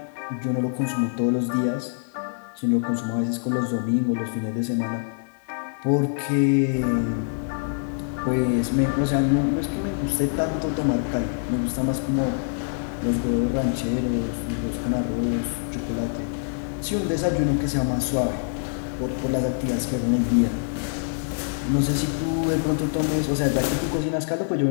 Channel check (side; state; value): right; silent; digital silence